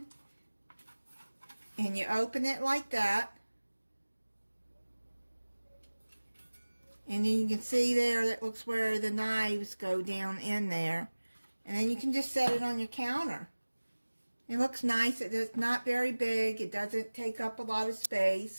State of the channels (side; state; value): both; inverted; correlation -1.00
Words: and you open it like that, and then you can see there that looks where the knives go down in there, and then you can just set it on your counter. It looks nice. It's not very big. It doesn't take up a lot of